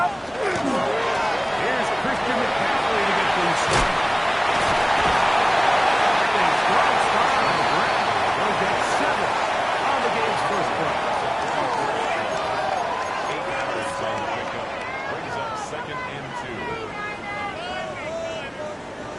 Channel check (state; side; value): identical; both; correlation 1.00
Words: Here's Christian McCaffrey to get things started. They'll get 7 on the game's first play. 8 yards on the pickup. Brings up 2nd and 2.